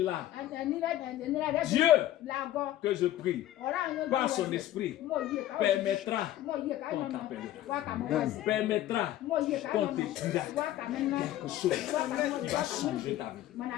Dieu, que je prie, par son esprit, permettra qu'on t'appelle. Permettra qu'on te dira quelque chose qui va changer ta vie.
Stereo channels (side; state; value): right; quieter; 13.5 dB